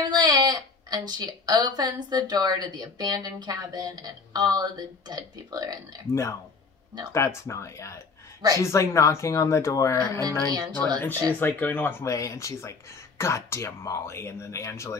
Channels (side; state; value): right; quieter; 4.4 dB